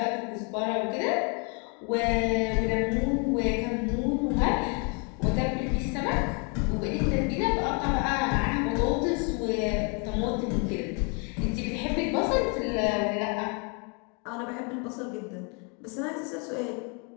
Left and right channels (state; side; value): quieter; right; 34.9 dB